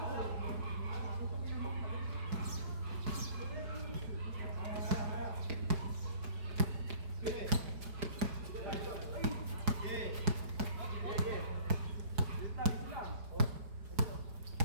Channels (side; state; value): left; late; 4.8 ms